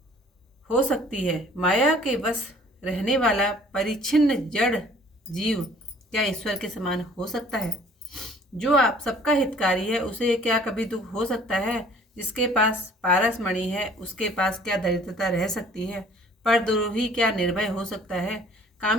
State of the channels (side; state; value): both; normal; correlation 0.54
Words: हो सकती है। माया के वश रहने वाला परिच्छिन्न जड़ जीव क्या ईश्वर के समान हो सकता है? जो आप सबका हितकारी है उसे क्या कभी दुख हो सकता है? जिसके पास पारस मणि है उसके पास क्या दरिद्रता रह सकती है? परद्रोही क्या निर्भय हो सकता है?